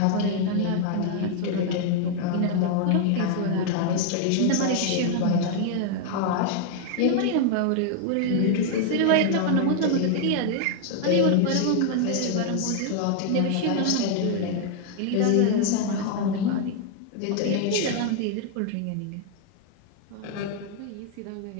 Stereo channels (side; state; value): both; different; correlation 0.00